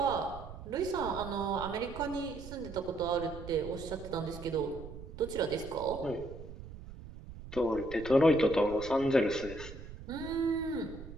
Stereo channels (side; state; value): right; noise; rumble, 13 dB below the sound